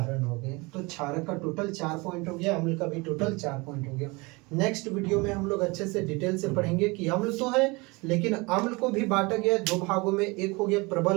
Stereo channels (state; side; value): quieter; left; 25.7 dB